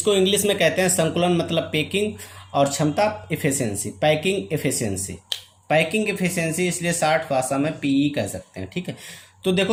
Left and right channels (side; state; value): both; identical; correlation 1.00